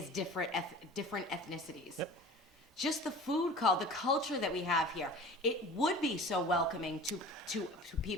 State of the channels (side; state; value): both; normal; correlation 0.40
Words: different ethnicities. Yep. Just the food the culture that we have here, it would be so welcoming to